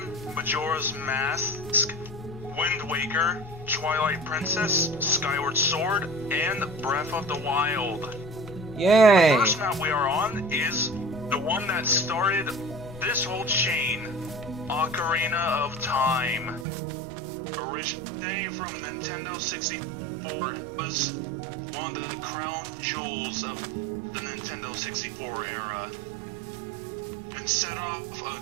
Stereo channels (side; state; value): left; drops out; at 16.7 s